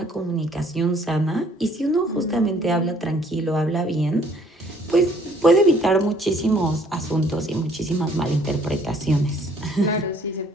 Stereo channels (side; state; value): both; normal; correlation 0.60